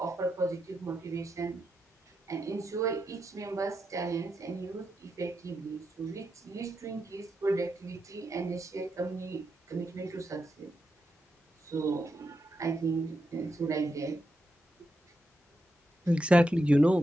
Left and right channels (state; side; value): normal; both; correlation 0.85